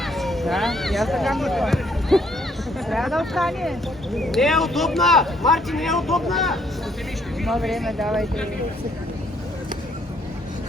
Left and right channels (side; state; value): both; normal; correlation 0.67